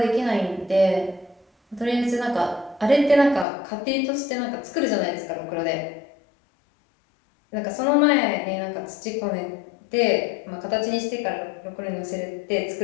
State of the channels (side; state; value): right; drops out; at 3.5 s